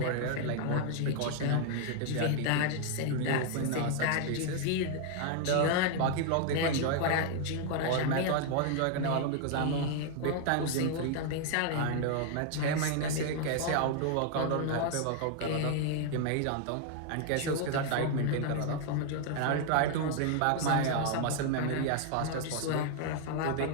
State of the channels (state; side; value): different; both; correlation 0.00